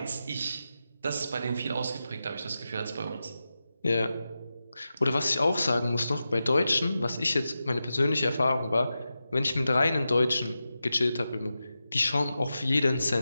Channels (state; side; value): inverted; both; correlation -0.91